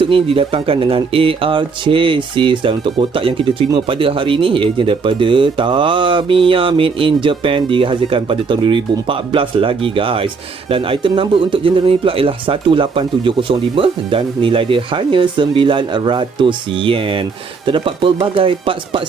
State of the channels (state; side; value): quieter; left; 4.9 dB